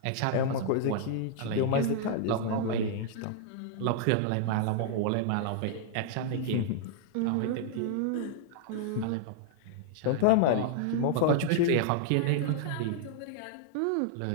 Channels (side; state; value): both; different; correlation -0.01